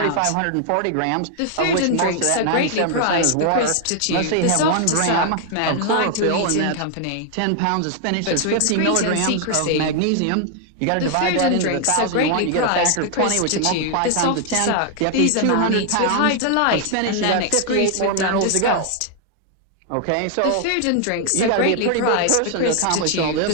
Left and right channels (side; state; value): both; different; correlation 0.00